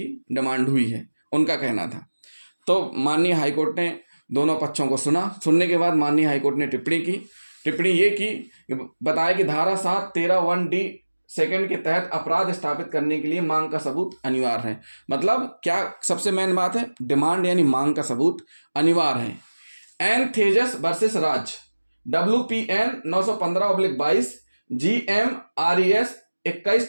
डिमांड हुई है, उनका कहना था। तो माननीय हाईकोर्ट ने दोनों पक्षों को सुना। सुनने के बाद माननीय हाईकोर्ट ने टिप्पणी की। टिप्पणी ये की, बताया कि धारा 713(1)D सेकंड के तहत अपराध स्थापित करने के लिए मांग का सबूत अनिवार्य है। मतलब क्या सबसे मेन बात है, डिमांड यानी मांग का सबूत अनिवार्य है। एन थेजस वर्सेस राज WPN 915/22 GMRES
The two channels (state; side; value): inverted; both; correlation -1.00